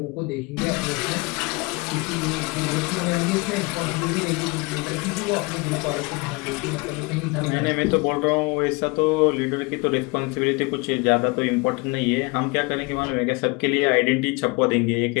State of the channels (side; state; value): right; quieter; 27.2 dB